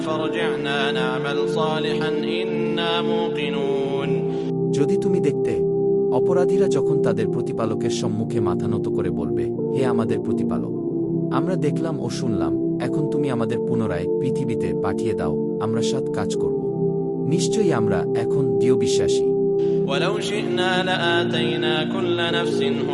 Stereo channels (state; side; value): identical; both; correlation 1.00